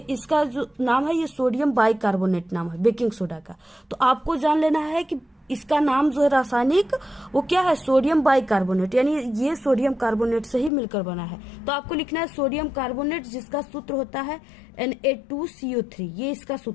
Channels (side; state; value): right; drops out; at 10.7 s